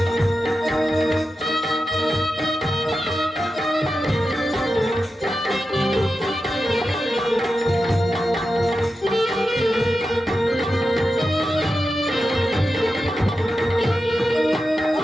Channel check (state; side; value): normal; both; correlation 0.90